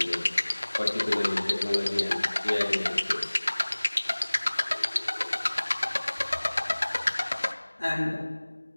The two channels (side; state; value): both; inverted; correlation -1.00